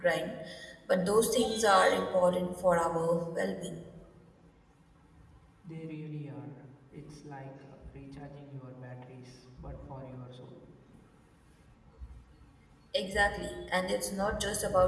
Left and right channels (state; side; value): identical; both; correlation 1.00